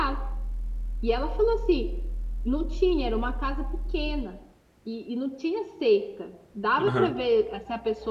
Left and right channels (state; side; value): identical; both; correlation 1.00